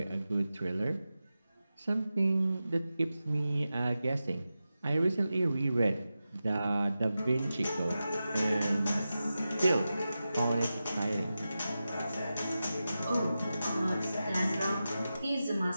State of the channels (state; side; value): inverted; both; correlation -0.93